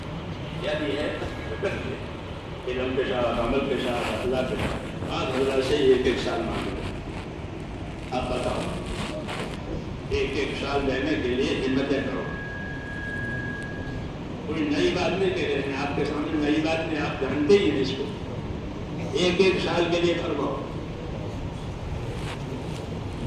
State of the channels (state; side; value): identical; both; correlation 1.00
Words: کیا دی ہے؟ حسد کی ہے. علم کے ساتھ، عمل کے ساتھ، اللہ کے ساتھ. آج اللہ سے ایک ایک سال مانگے. آپ بتاؤ، ایک ایک سال لینے کے لیے ہمتیں کرو. کوئی نئی بات نہیں کہہ رہے ہیں آپ کے سامنے، نئی بات نہیں، آپ جانتے ہی ہیں اس کو. ایک ایک سال کے لیے فرماؤ.